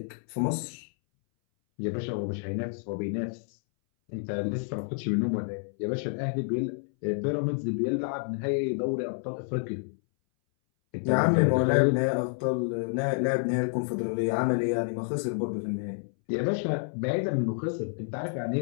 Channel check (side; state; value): right; silent; 59 dB below the other